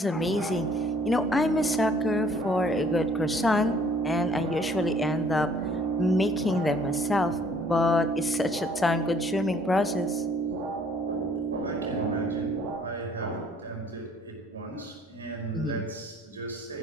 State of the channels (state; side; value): normal; both; correlation 0.59